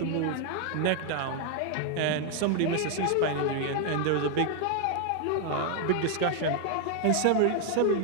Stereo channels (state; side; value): different; both; correlation 0.00